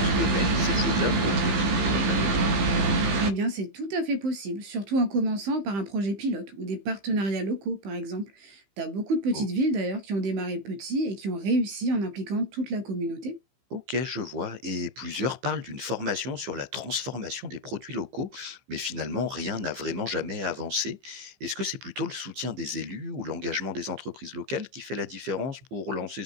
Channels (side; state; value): left; late; 15 ms